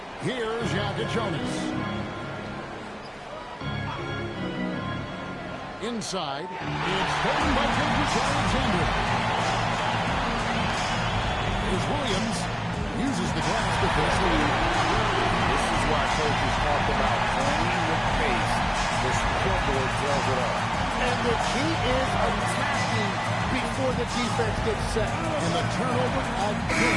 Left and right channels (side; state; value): both; identical; correlation 1.00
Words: Here's Jonas. Inside. It's taken by Gilgeous-Alexander. Here's Williams. Uses the glass to push the lead. This is why coaches talk about playing with pace. The scoreboard tells it all. And the key is attacking before the defense gets set. And the turnover